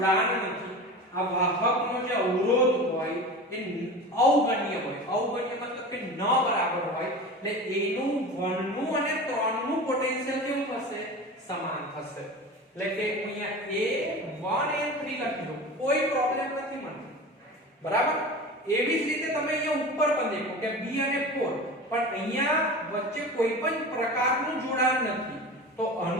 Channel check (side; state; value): both; normal; correlation 0.32